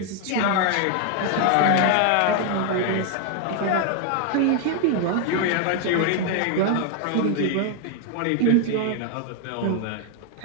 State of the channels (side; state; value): both; different; correlation 0.00